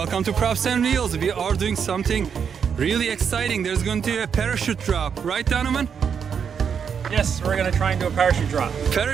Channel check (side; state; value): left; quieter; 7.1 dB